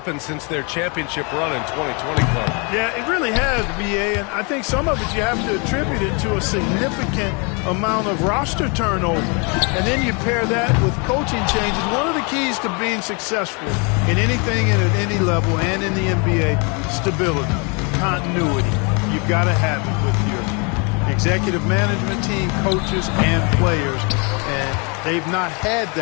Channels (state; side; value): quieter; right; 32.9 dB